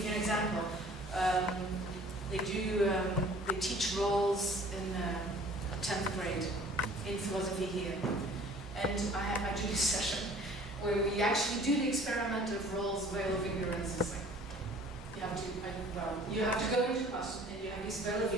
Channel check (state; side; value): normal; both; correlation 0.50